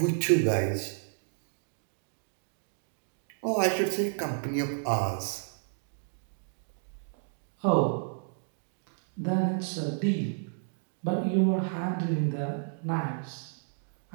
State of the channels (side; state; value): left; silent; digital silence